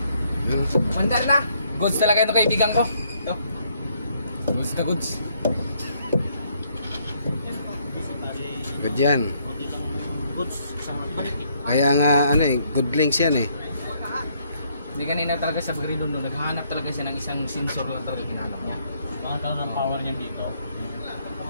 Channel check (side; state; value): both; inverted; correlation -0.69